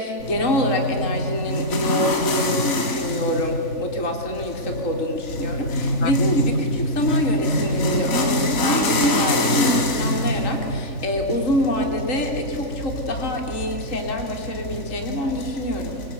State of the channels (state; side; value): late; right; 3.4 ms